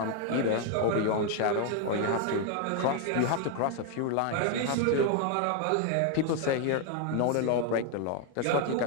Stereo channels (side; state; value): both; different; correlation 0.00